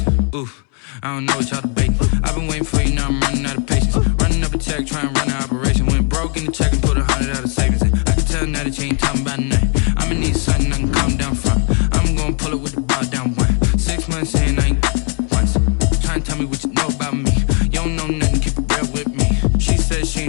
Oof, I don't know what y'all debating. I've been waiting for you, now I'm running out of patience. Running up a check, trying to run an operation. Went broke in the check and put 100 out of savings in. I can tell now that you ain't talking about nothing. I'ma need something I can calm down from. I'm gonna pull it with the bar down one. 6 months in, I ain't once. Try and tell me what you know about me. You don't know nothing, keep it real with me. She said she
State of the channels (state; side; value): quieter; right; 39.0 dB